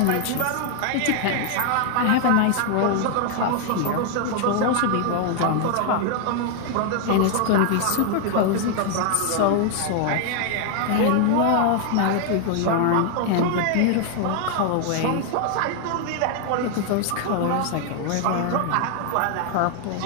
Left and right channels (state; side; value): different; both; correlation 0.00